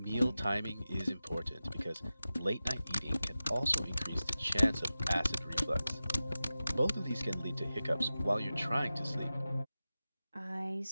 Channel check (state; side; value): inverted; both; correlation -0.95